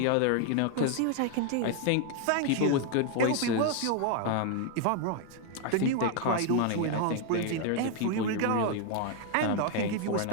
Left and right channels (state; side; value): different; both; correlation 0.00